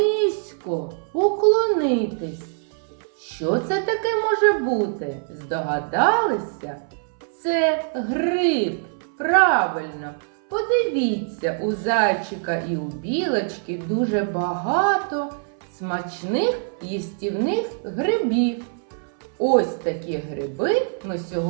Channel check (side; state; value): left; silent; 63 dB below the other